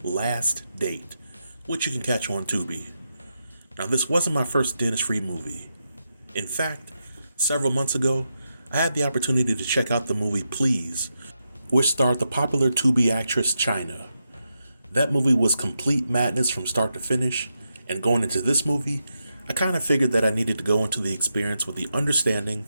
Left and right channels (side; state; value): both; inverted; correlation -0.86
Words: Last Date, which you can catch on Tubi. Now this wasn't my first Dennis Reed movie. In fact, several months ago I had the opportunity to check out the movie Please, which starred the popular Tubi actress China. That movie was complete madness from start to finish, and going into this movie I kind of figured that I needed to go into the experience with the understanding